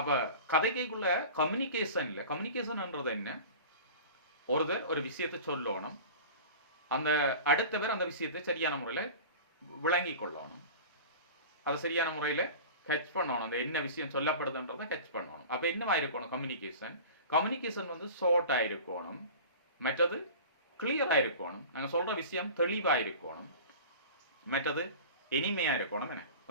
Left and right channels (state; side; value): inverted; both; correlation -0.37